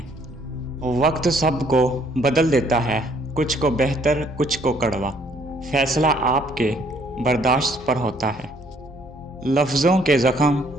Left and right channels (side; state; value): both; normal; correlation 0.64